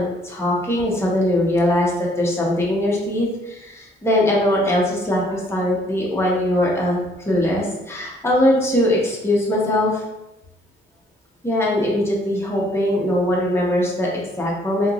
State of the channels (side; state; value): both; normal; correlation 0.64